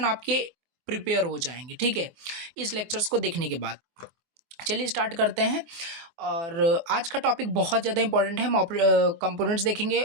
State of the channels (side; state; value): left; late; 24 ms